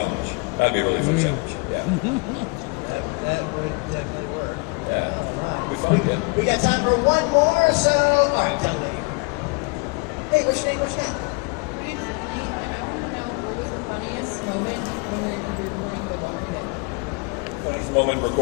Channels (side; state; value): right; quieter; 32.6 dB